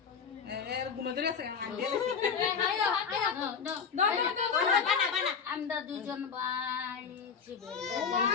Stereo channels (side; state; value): right; quieter; 6.3 dB